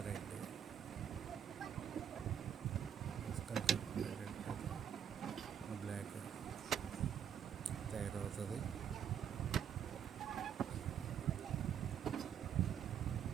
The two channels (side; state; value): left; quieter; 8.6 dB